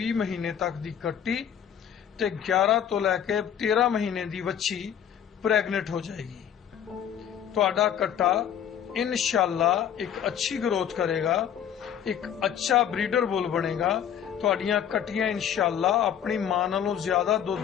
ਮਹੀਨੇ ਤੱਕ ਦੀ ਕੱਟੀ ਤੇ 11 ਤੋਂ ਲੈ ਕੇ 13 ਮਹੀਨੇ ਦੀ ਵੱਛੀ ਪ੍ਰੈਗਨੈਂਟ ਹੋ ਜਾਏਗੀ। ਤੁਹਾਡਾ ਕੱਟਾ ਇਨਸ਼ਾਅੱਲਾ ਇੱਕ ਅੱਛੀ ਗਰੋਥ ਕਰੇਗਾ, ਇੱਕ ਅੱਛਾ ਬਰੀਡਰ ਬੁੱਲ ਬਣੇਗਾ। ਤੁਹਾਡੀਆਂ ਕੱਟੀਆਂ ਇਨਸ਼ਾਅੱਲਾ ਆਪਣੀ ਮਾਂ ਨਾਲੋਂ ਜ਼ਿਆਦਾ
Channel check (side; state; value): right; quieter; 9.1 dB